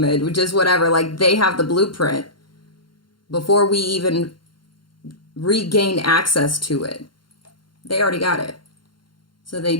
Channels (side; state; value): right; late; 0.72 ms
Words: and just whatever, like they have the blueprint before we even regain access to it. They already got it. So